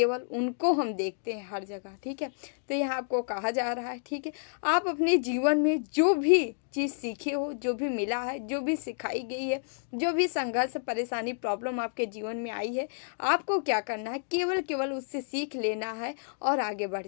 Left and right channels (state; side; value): silent; right; digital silence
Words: उनको हम देखते हैं हर जगह, ठीक है। तो यहाँ आपको कहा जा रहा है, ठीक है, आप अपने जीवन में जो भी चीज़ सीखे हो, जो भी मिला है, जो भी सिखाई गई है, जो भी संघर्ष, परेशानी, प्रॉब्लम आपके जीवन में आई है, आपको क्या करना है, केवल उससे सीख लेना है और आगे बढ़